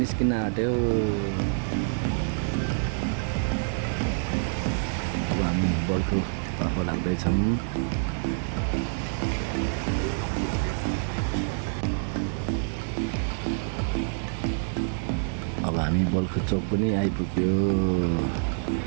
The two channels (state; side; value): silent; left; digital silence